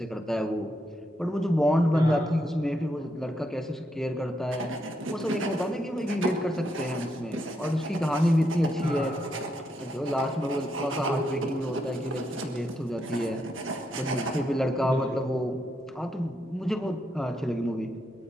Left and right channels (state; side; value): normal; both; correlation 0.80